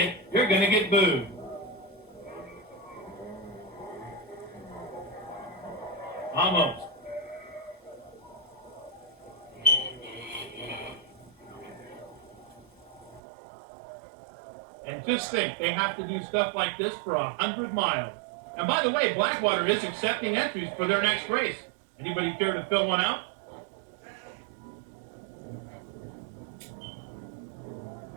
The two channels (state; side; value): drops out; left; at 13.2 s